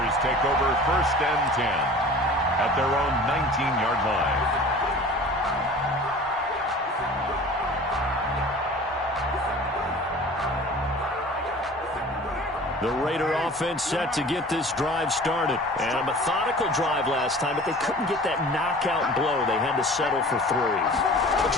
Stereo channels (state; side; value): normal; both; correlation 0.43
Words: take over first and 10 at their own 19-yard line. The Raider offense set to get this drive started. And a methodical drive last time, but they couldn't get that knockout blow. They had to settle for 3. But